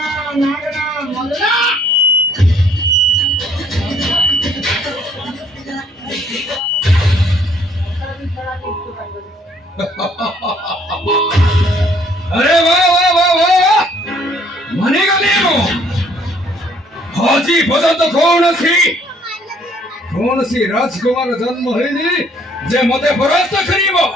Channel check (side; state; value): both; normal; correlation 0.62